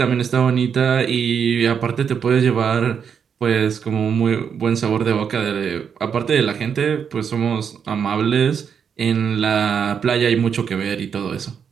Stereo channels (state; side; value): quieter; left; 7.2 dB